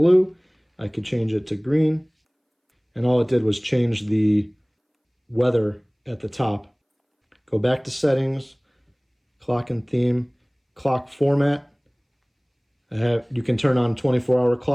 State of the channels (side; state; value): both; identical; correlation 1.00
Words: I could change it to green. And all it did was change the weather at the top. Go back to settings, clock and theme, clock format. You can turn on 24-hour